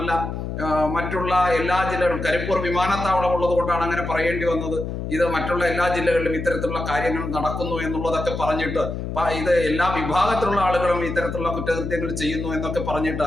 മറ്റുള്ള എല്ലാ ജില്ലകളും, കരിപ്പൂർ വിമാനത്താവളം ഉള്ളത് കൊണ്ടാണ് അങ്ങനെ പറയേണ്ടി വന്നത്. ഇത് മറ്റുള്ള എല്ലാ ജില്ലകളിലും ഇത്തരത്തിലുള്ള കാര്യങ്ങൾ നടക്കുന്നു എന്നുള്ളതൊക്കെ പറഞ്ഞിട്ട്, ഇത് എല്ലാ വിഭാഗത്തിലുള്ള ആളുകളും ഇത്തരത്തിലുള്ള കുറ്റകൃത്യങ്ങൾ ചെയ്യുന്നു എന്നൊക്കെ പറഞ്ഞിട്ട്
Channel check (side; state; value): left; noise; hum, 5 dB below the sound